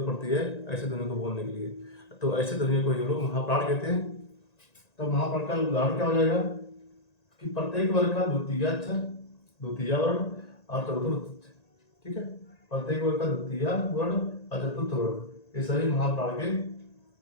पड़ती है ऐसे ध्वनि को बोलने के लिए, तो ऐसे ध्वनि को ये लोग महाप्राण कहते हैं। तो महाप्राण का उदाहरण क्या हो जाएगा कि प्रत्येक वर्ग का द्वितीय अक्षर, द्वितीय वर्ण और चतुर्थ, ठीक है, प्रत्येक वर्ग का द्वितीय वर्ण और चतुर्थ वर्ण ये सभी महाप्राण के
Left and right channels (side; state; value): right; late; 1.9 ms